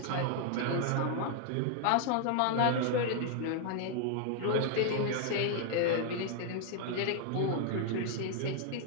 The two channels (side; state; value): both; different; correlation 0.00